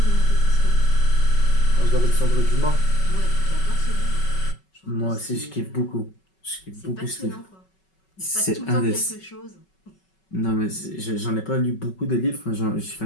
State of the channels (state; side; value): late; right; 5.3 ms